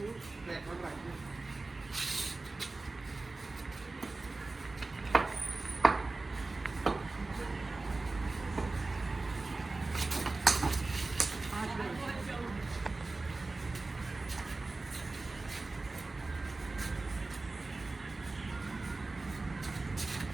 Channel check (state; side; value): quieter; left; 3.4 dB